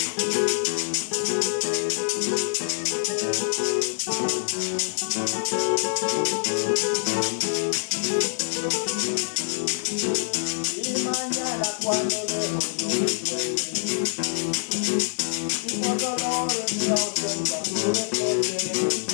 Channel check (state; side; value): silent; right; digital silence